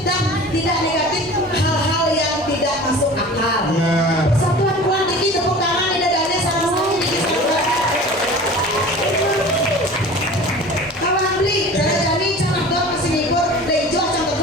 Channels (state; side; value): normal; both; correlation 0.40